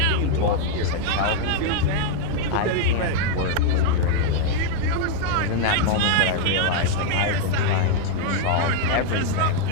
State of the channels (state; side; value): different; both; correlation 0.00